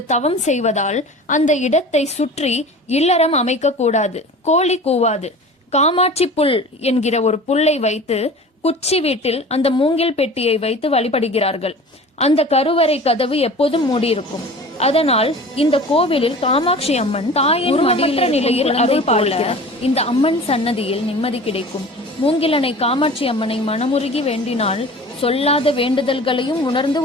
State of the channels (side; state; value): both; normal; correlation 0.39